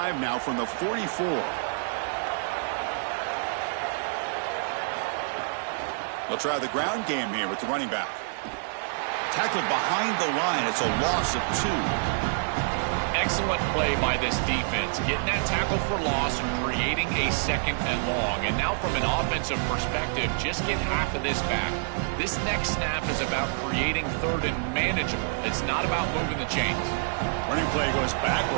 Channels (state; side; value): silent; left; digital silence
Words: now from the 44. They'll try the ground game here with the running back. Tackled behind the line. It's a loss of 2. Excellent play by this defense, getting that tackle for loss and creating a 2nd and long. And now from an offensive perspective, just get half of this back. This next snap is about creating 3rd and manageable. It's not about moving the chains. Running play goes